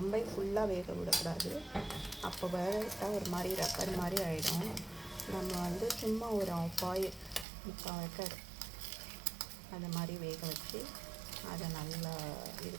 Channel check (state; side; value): drops out; left; at 7.5 s